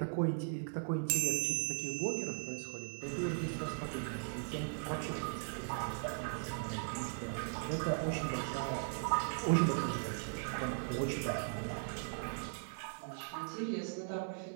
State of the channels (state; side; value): silent; left; 52 dB below the other